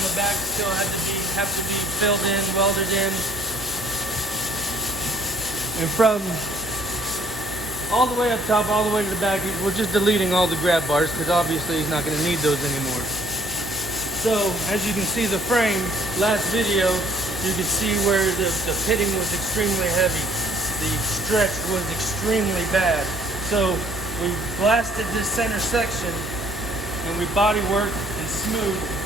the back still have to be filled in, welded in. And from all the way up top, all the way to the back, we're just deleting all the grab bars because obviously he's not going to need those anymore. So, as you can see the frame, last video, you could see where the pitting was extremely heavy. The stretch was extremely bad. So, we blasted this center section and we body worked and smoothed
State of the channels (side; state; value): both; normal; correlation 0.60